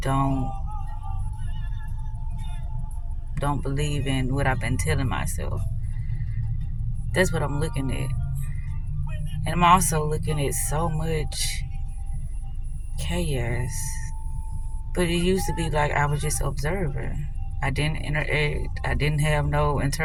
don't believe in what I've been telling myself. That's what I'm looking at. And I'm also looking at so much chaos. But it used to be like I was just observing. I didn't interact. I didn't have no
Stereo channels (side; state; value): both; identical; correlation 1.00